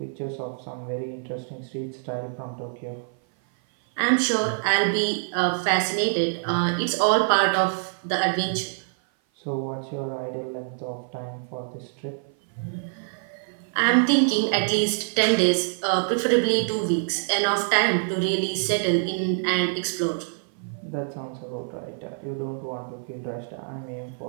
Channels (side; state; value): left; silent; 56 dB below the other